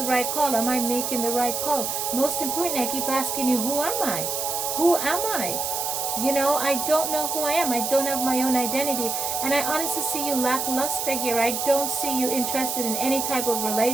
right call? Am I making the right call? Most importantly, I keep asking you, who am I? Who am I? You know, I don't know who I am. I don't have my own identity. And I honestly see you lackluster here. I don't see you interested in any type of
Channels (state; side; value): noise; right; hiss, 2 dB below the sound